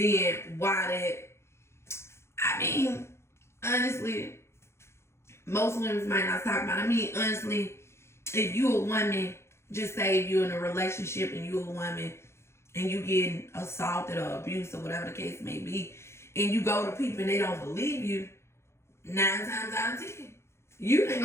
why that? I mean, honestly, most women might not talk about it. I mean, honestly, if you a woman, just say if you're in a relationship and you a woman and you getting assaulted or abused or whatever the case may be, and you go to people and they don't believe you, 9 times out of 10, you ain't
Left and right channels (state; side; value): late; right; 0.13 ms